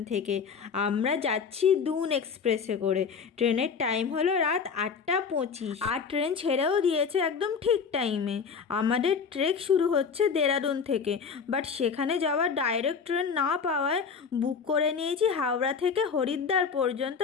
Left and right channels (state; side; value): quieter; right; 6.0 dB